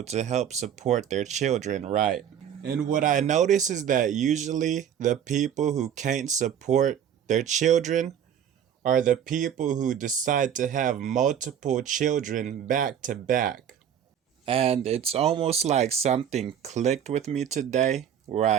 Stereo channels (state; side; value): quieter; left; 9.1 dB